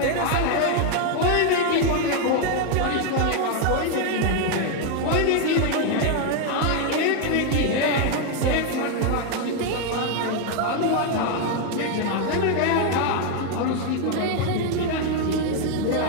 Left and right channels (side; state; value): both; different; correlation 0.01